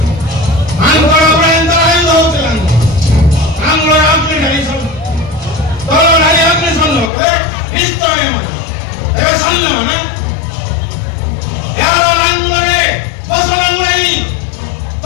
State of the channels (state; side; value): drops out; right; at 7.1 s